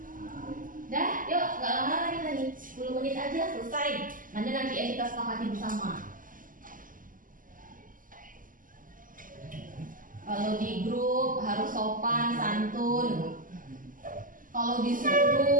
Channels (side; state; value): left; late; 0.39 ms